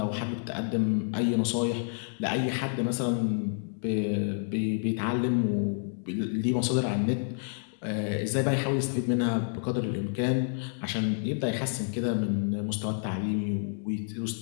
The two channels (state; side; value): silent; right; digital silence